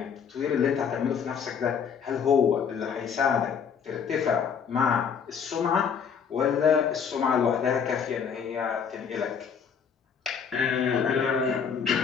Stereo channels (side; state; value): right; quieter; 6.9 dB